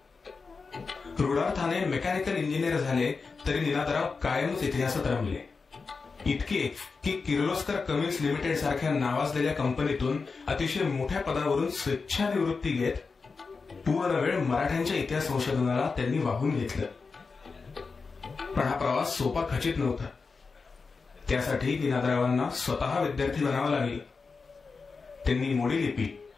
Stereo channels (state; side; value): quieter; right; 4.6 dB